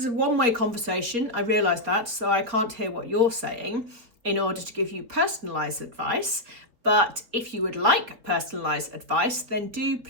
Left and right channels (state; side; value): late; left; 4.4 ms